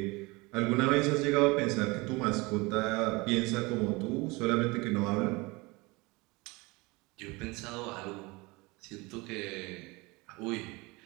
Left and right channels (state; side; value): quieter; left; 24.7 dB